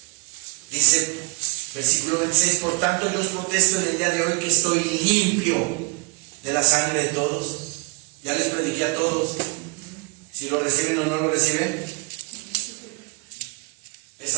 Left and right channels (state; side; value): quieter; left; 30.9 dB